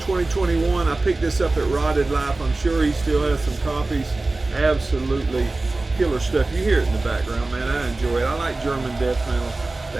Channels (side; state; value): left; quieter; 3.2 dB